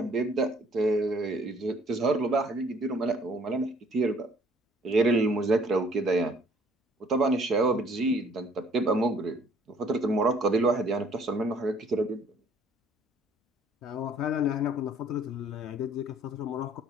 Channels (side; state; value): both; normal; correlation 0.58